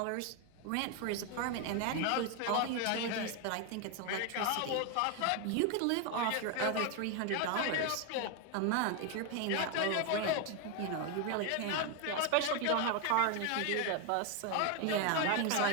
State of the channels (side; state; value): both; different; correlation 0.01